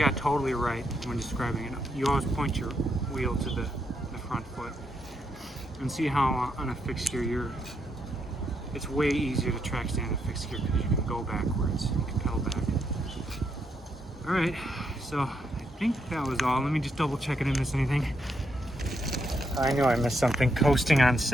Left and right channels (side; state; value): both; normal; correlation 0.79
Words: got totally right when describing it. You always point your wheel to the front foot. And see how on a fixed gear it's way easier to track stand a fixed gear because you can go backwards. You can pedal back. Alright, so I think that was all. Let me just double check I didn't miss anything. I know I missed something. Coasting on